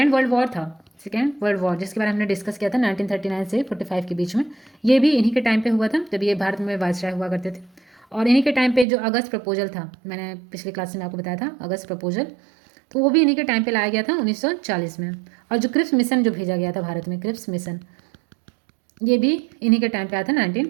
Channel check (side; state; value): left; drops out; at 8.8 s